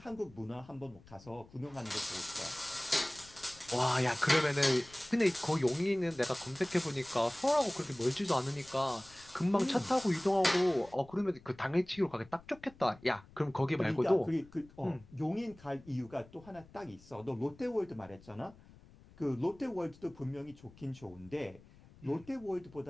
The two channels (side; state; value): left; noise; rumble, 23 dB below the sound